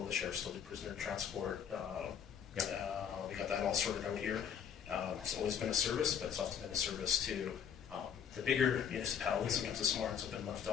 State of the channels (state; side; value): quieter; right; 8.1 dB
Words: the sheriff still do prisoner transport. We got that all sorted out here. It's always been a service, but it's often been a service to the bigger municipalities. Sometimes the small ones have been left